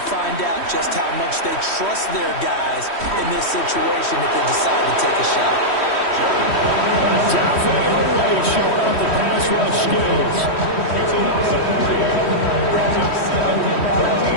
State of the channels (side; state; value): right; late; 3.1 ms